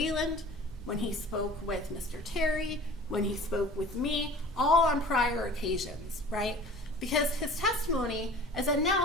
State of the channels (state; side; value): normal; both; correlation 0.44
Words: when he spoke with Mr. Terry, when he spoke with me, all on prior occasions, right? Because his testimony is that